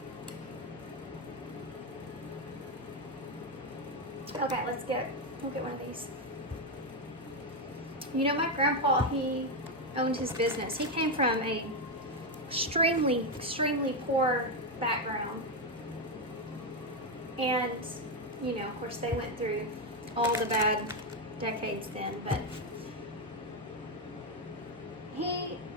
Okay, we'll get one of these. You know, my grandpa, he owned his business. He came from a extremely, extremely poor background. And, you know, of course, they went through all the bad decades then, but he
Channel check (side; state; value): both; normal; correlation 0.06